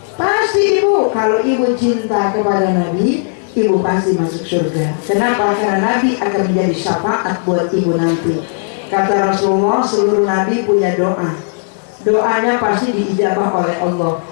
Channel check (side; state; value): right; silent; digital silence